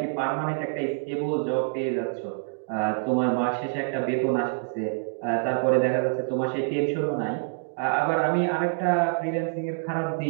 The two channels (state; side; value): silent; left; digital silence